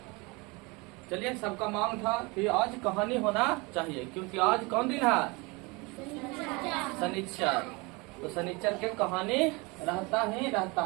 चलिए, सबका मांग था कि आज कहानी होना चाहिए, क्योंकि आज कौन दिन है? शनिचर। तो शनिचर के कहानी रहता ही रहता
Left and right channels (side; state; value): left; quieter; 26.6 dB